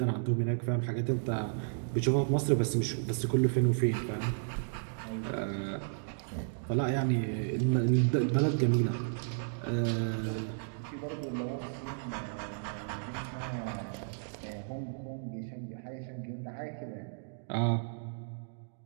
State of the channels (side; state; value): left; silent; digital silence